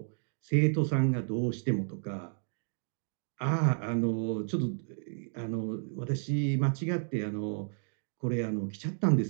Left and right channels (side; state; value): left; silent; digital silence